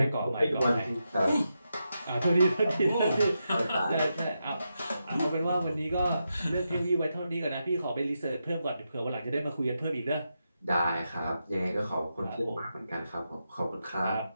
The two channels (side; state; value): both; inverted; correlation -0.86